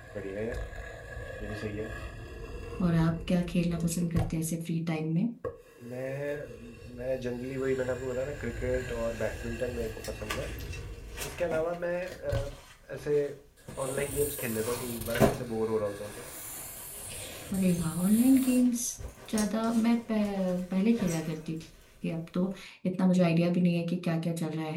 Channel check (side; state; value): both; identical; correlation 1.00